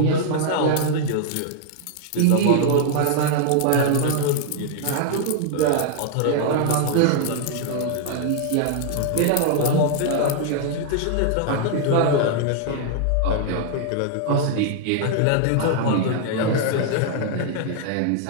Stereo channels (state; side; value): different; both; correlation 0.00